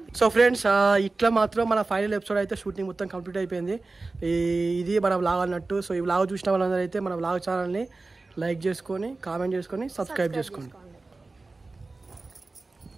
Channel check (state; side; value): quieter; left; 3.5 dB